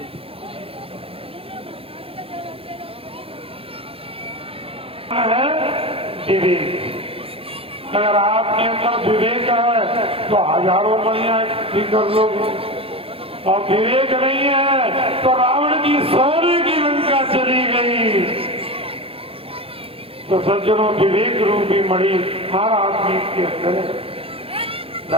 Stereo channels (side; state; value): left; late; 0.27 ms